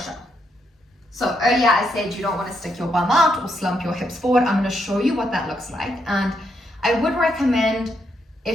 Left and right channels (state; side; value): normal; both; correlation 0.78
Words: up. So earlier I said you don't want to stick your bum out or slump your hips forward. I'm going to show you what that looks like. And I would recommend,